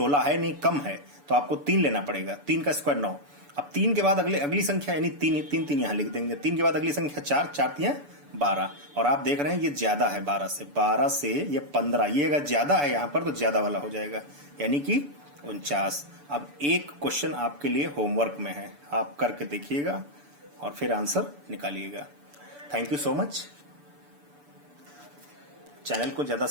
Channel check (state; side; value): late; left; 6.9 ms